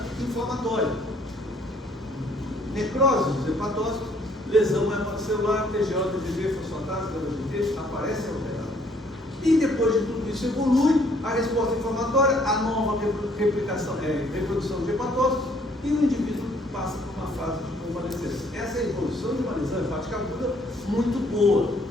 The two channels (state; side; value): normal; both; correlation 0.63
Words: inflamatória. Necrose dos hepatócitos, lesão hepatocelular, TGO, TGV, fosfatase, GT, aparece alterado. E depois de tudo isso evolui a resposta inflamatória, a nova reprodução de hepatócitos, e o indivíduo passa por uma fase de convalescência. Essa é a evolução de uma lesão hepática aguda muito boa.